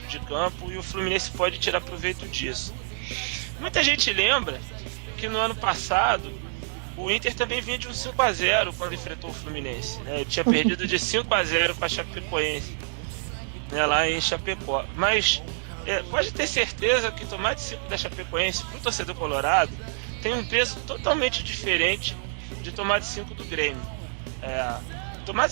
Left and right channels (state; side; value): silent; left; 60 dB below the other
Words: de campo, e o Fluminense pode tirar proveito disso. Muita gente lembra que no ano passado o Inter também vinha de um 5-0 quando enfrentou o Fluminense, né? Ele tinha perdido de 5-0 com a Chapecoense, né, lá em Chapecó. Mas pode ter certeza que tomar de 5 da Chapecoense para o torcedor colorado tem um peso totalmente diferente de tomar de 5 do Grêmio. Tomar